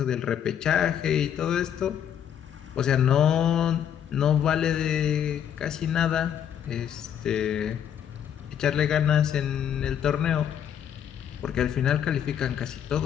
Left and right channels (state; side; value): quieter; right; 9.3 dB